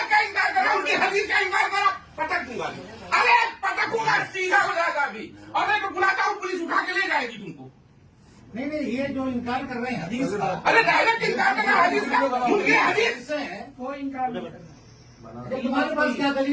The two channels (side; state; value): both; identical; correlation 1.00